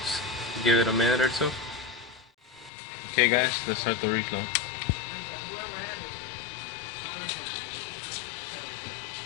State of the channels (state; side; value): drops out; right; at 2.7 s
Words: Just give it a minute or two. Okay, guys, let's start the reflow.